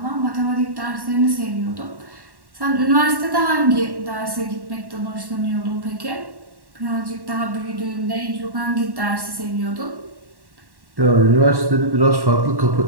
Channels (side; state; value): left; late; 1.1 ms